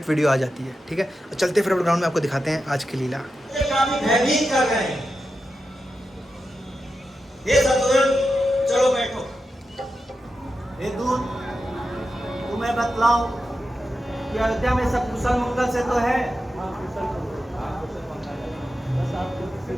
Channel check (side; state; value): both; normal; correlation 0.89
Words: वीडियो आ जाती है, ठीक है। और चलते फॉरवर्ड ग्राउंड में आपको दिखाते हैं आज की लीला। भयभीत कर रहे हैं। ये सतुरन, चलो बैठो। हे दूत, तुम्हें बतलाओ कि अयोध्या में सब कुशल मंगल से तो है।